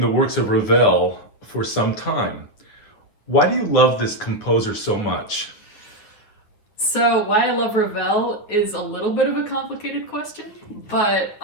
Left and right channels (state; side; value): late; right; 9.3 ms